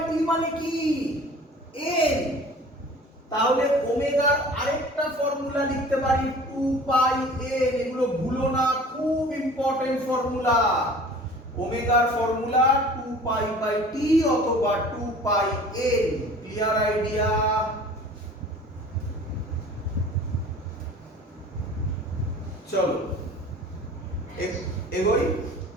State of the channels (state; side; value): normal; both; correlation 0.45